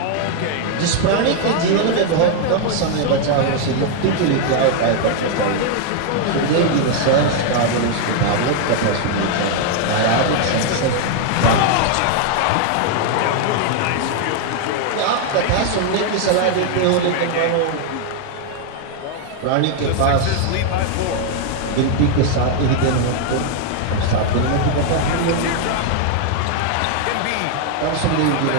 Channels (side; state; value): both; different; correlation 0.00